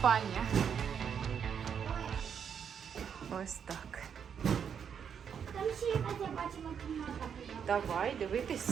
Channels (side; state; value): left; quieter; 7.6 dB